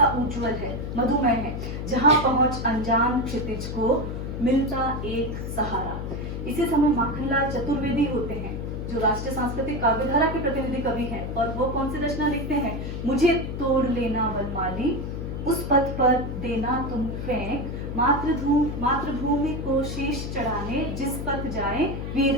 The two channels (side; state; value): left; noise; hum, 5 dB below the sound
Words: उज्जवल है, मधुमय है, जहाँ पहुंच अनजान क्षितिज को मिलता एक सहारा। इसी समय माखनलाल चतुर्वेदी होते हैं जो राष्ट्रीय सांस्कृतिक काव्यधारा के प्रतिनिधि कवि हैं, और वो कौन सी रचना लिखते हैं? मुझे तोड़ लेना वनमाली, उस पथ पर देना तुम फेंक, मातृभूमि को शीश चढ़ाने, जिस पथ जाए